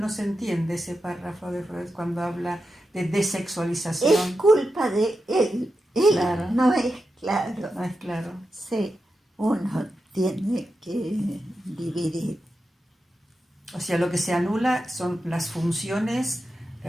se entiende ese párrafo de Freud cuando habla de desexualización. Es culpa de él. Él Claro. no es claro. No es claro. Sí, uno tiene que dividir. O sea, lo que se anula son las funciones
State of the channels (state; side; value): normal; both; correlation 0.89